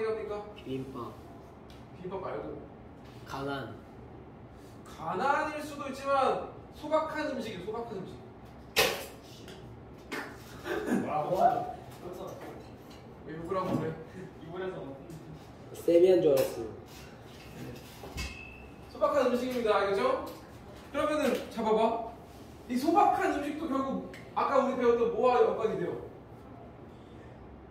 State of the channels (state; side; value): identical; both; correlation 1.00